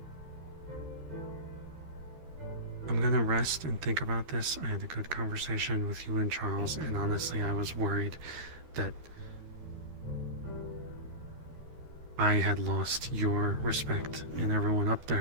I'm gonna rest and think about this. I had a good conversation with you and Charles, and honestly, I was worried that I had lost your respect and everyone up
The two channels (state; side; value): late; left; 13 ms